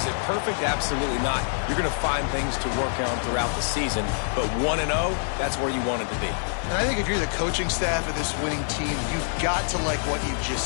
it perfect? Absolutely not. You're going to find things to work on throughout the season, but 1-0, that's where you want it to be. And I think if you're the coaching staff of this winning team, you've got to like what you've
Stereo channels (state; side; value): silent; right; 55 dB below the other